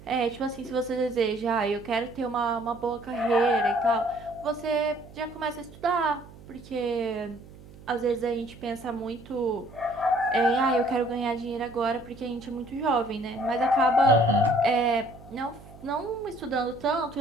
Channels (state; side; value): noise; right; hum, 20 dB below the sound